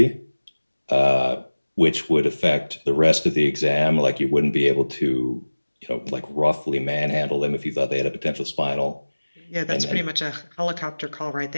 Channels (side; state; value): both; inverted; correlation -1.00